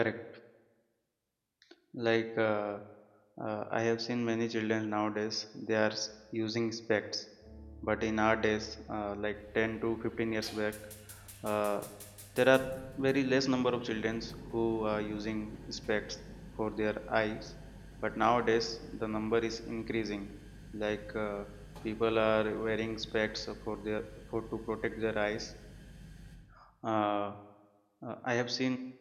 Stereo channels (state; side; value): identical; both; correlation 1.00